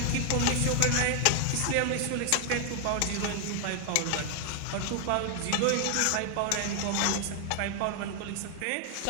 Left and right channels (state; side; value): different; both; correlation 0.00